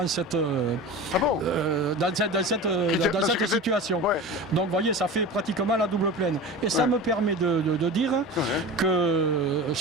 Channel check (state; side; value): normal; both; correlation 0.31